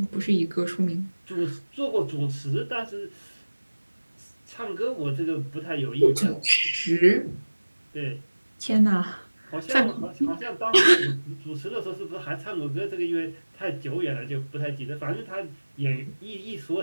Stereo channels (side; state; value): both; inverted; correlation -1.00